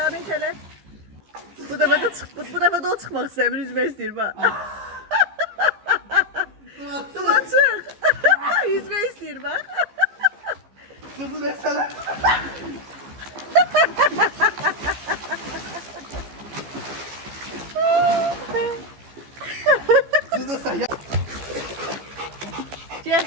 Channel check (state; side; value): late; left; 15 ms